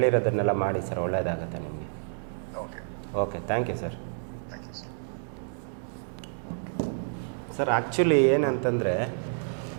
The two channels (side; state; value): left; silent; digital silence